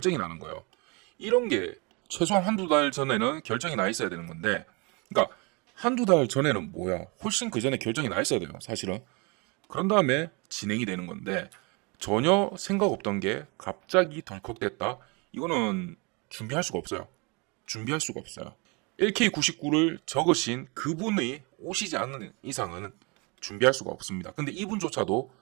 나는 거예요. 이런 게 최소한 한두 달 전에는 결정이 나 있어야 되는 건데, 그러니까 한두 달 전에는 뭐야, 훨씬 그 전에 결정이 나 있어야 돼요, 사실은. 그런 다음에 진행이 되는 건데, 전혀 생각 없던 게 갑자기 덜컥됐다. 이거는 준비할 수가 없어요. 준비할 수가 없어요. LK99를 적으신 그분이 오시지 않는 이상은 준비할 수가 없습니다. 근데 이분조차도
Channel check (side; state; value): left; quieter; 29.9 dB